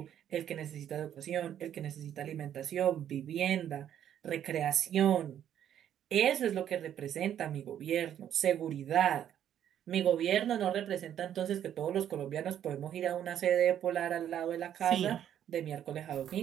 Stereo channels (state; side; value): quieter; left; 10.2 dB